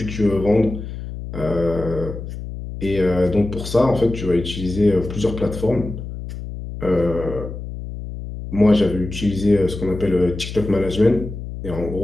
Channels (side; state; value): left; noise; hum, 9 dB below the sound